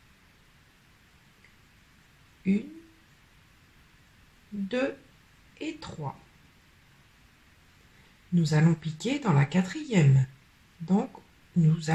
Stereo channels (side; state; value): both; identical; correlation 1.00